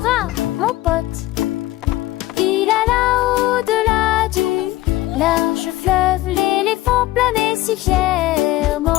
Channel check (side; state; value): right; quieter; 16.6 dB